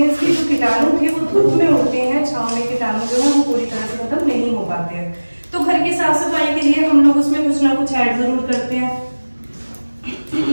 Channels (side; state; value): both; inverted; correlation -1.00